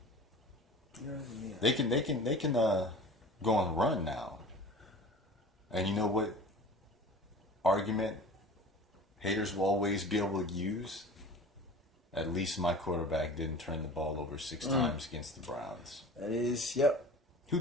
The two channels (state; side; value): normal; both; correlation 0.40